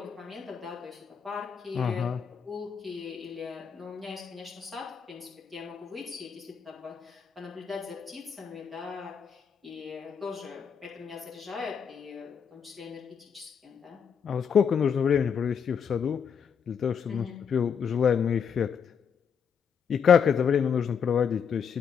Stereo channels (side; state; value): right; quieter; 7.1 dB